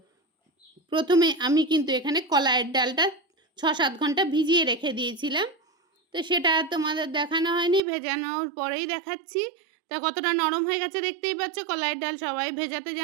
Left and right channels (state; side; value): drops out; left; at 7.8 s